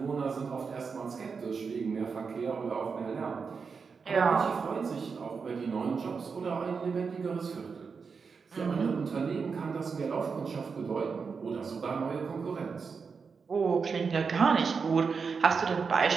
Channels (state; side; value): quieter; left; 5.4 dB